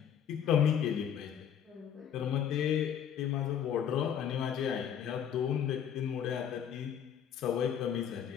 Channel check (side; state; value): right; quieter; 8.8 dB